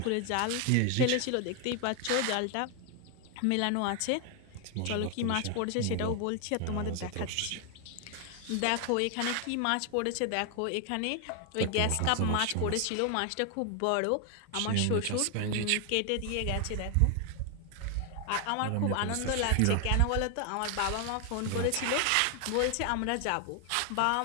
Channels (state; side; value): different; both; correlation 0.00